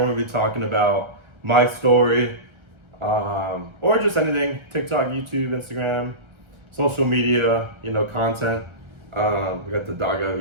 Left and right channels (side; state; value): left; late; 1.3 ms